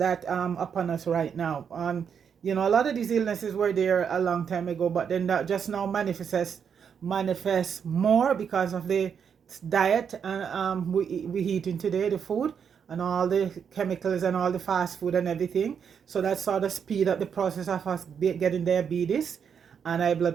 upon us right now. A lot of these illnesses were there a long time ago, but then that just now manifests more because of the diet and we eating today, the food and all the chemicals and all the fast food and everything. So that sort of speed up the process of us getting diabetes and high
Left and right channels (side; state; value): left; quieter; 7.2 dB